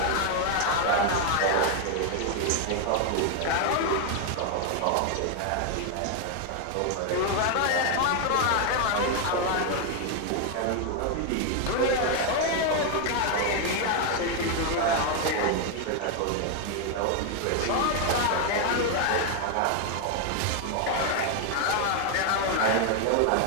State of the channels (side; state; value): both; different; correlation 0.01